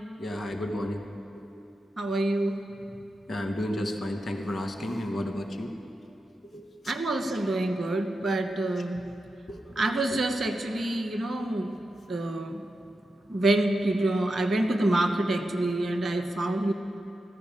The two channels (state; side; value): normal; both; correlation 0.89